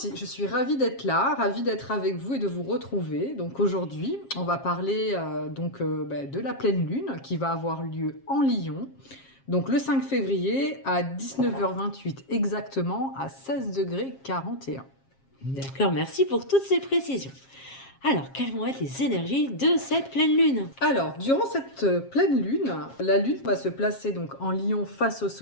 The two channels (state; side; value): late; right; 7.4 ms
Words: je suis ravie d'être là, ravie d'être avec vous et de vous retrouver. Donc aujourd'hui, on va parler de la pleine lune qui va avoir lieu en Lion. Donc le 5 février à 19h28 exactement à 16 degrés 41. D'accord, merci pour toutes ces précisions. Alors, quelles vont être les énergies de cette pleine lune? Alors, durant cette pleine lune, la lune va se placer donc en Lion face au